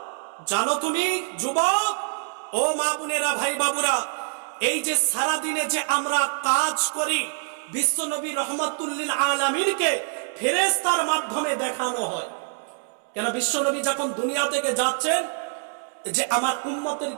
জানো তুমি যুবক, ও মা বোনেরা, ভাই বাবুরা, এই যে সারা দিনে যে আমরা কাজ করি, বিশ্বনবী রহমাতুল্লিল আলামিনকে ফেরেশতার মাধ্যমে দেখানো হয়। কেন? বিশ্বনবী যখন দুনিয়া থেকে যাচ্ছেন, যে আমার উম্মতের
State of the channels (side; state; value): left; silent; 61 dB below the other